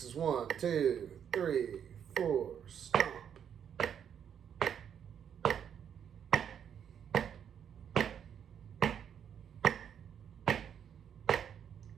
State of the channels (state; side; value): quieter; left; 8.4 dB